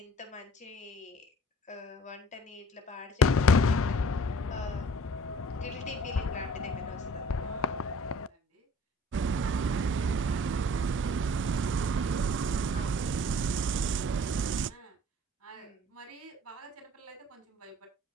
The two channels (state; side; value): normal; both; correlation 0.51